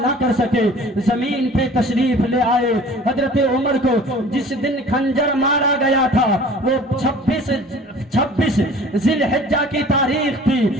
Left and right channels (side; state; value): both; normal; correlation 0.47